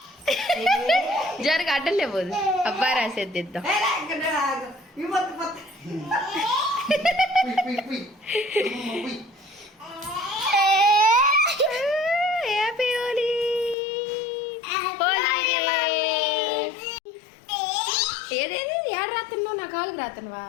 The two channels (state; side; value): drops out; right; at 13.8 s